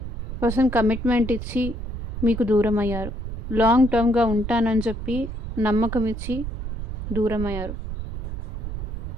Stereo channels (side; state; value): right; noise; rumble, 5 dB below the sound